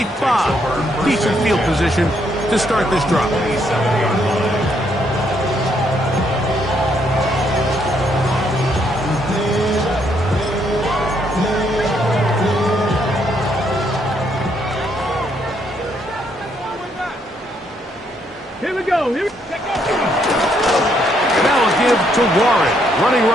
Decent field position to start this drive. Here we go. Now a give to Warren, running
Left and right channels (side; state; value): both; normal; correlation 0.73